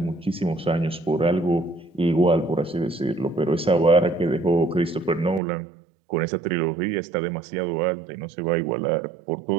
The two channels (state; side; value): drops out; left; at 5.4 s